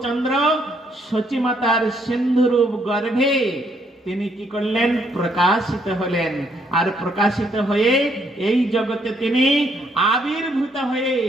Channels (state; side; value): normal; both; correlation 0.70